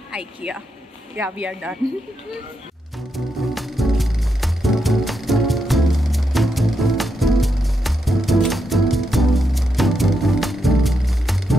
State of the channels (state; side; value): normal; both; correlation 0.82